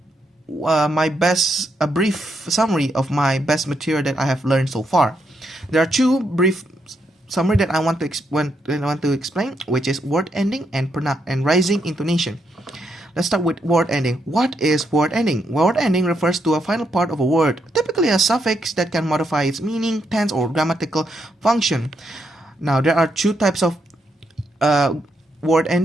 a brief summary of my best material that I have learned so far. There are two brief summary that I want to explain, which is word ending and rising intonation. Let's start with word ending. What is word ending? Word ending refers to a final part of a word, typically a suffix that can modify its meaning, tense, or grammatical function. Now, there are two types of word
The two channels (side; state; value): both; normal; correlation 0.79